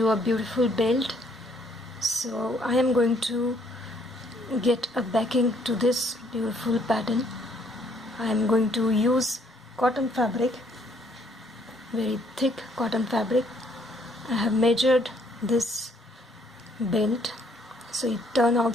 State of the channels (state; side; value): normal; both; correlation 0.66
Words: a beautiful belt. So I am going to get a backing to this beautiful pattern. I am going to use cotton fabric, very thick cotton fabric. I have measured this belt, so it turned out